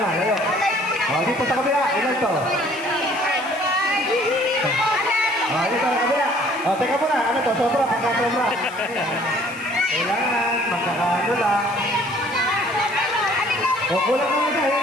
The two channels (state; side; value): noise; left; hiss, 21 dB below the sound